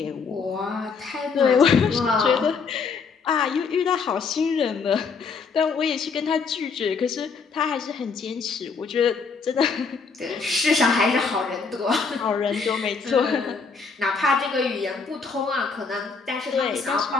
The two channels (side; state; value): right; quieter; 5.0 dB